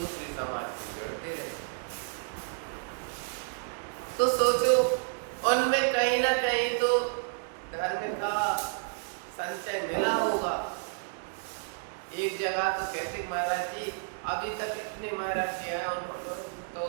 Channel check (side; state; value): left; silent; digital silence